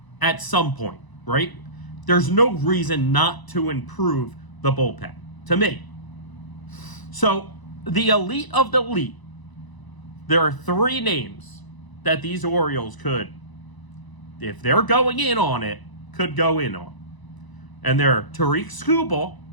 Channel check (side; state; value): right; late; 1.0 ms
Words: at some point, right? There's no reason not to improve the bullpen, to me. So, the elite of the elite, there are three names that these Orioles could, if they're going in on it, could go in on. And they're Tariq Skubal,